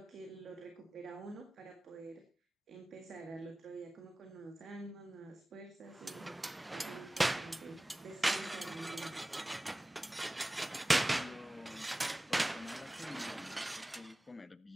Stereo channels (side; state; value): both; normal; correlation 0.97